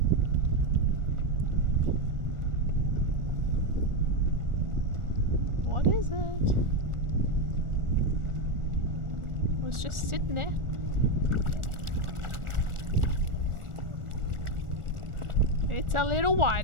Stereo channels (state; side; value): late; left; 1.4 ms